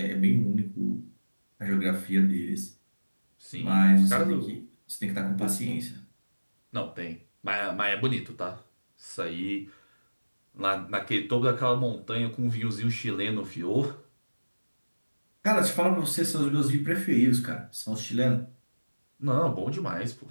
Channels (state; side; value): inverted; both; correlation -1.00